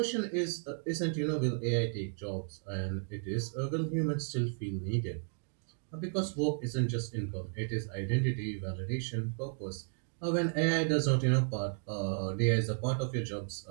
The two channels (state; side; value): silent; left; 55 dB below the other